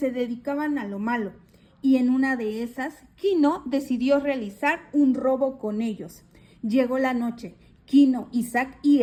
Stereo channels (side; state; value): both; identical; correlation 1.00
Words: dedicaban a lo malo, y en una de esas, Kino decidió realizar un robo con ellos. Llegó la noche. Kino, Isaac y